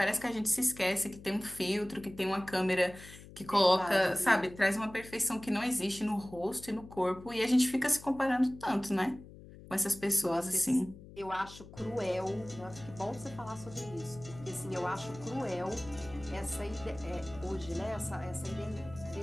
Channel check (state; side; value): noise; left; hum, 17 dB below the sound